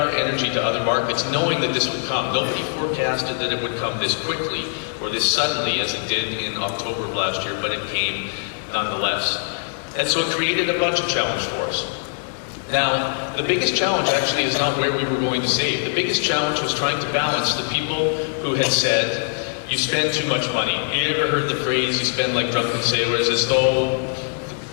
energy to other markets, knowing that this would come. Nobody forecasted that it would come this quickly or this suddenly as it did in October of last year, but it came nonetheless. And so it created a budget challenge for us. Now, the biggest challenge actually is not where we were going to save. The biggest challenge was trying to balance the people who had said, you spend too much money. You ever heard the phrase, you spend like drunken sailors, as though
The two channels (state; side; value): silent; right; 64 dB below the other